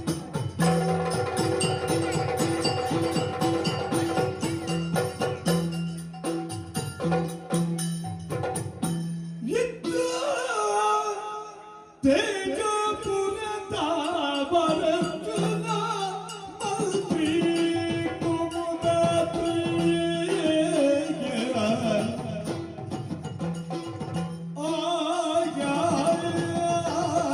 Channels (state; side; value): identical; both; correlation 1.00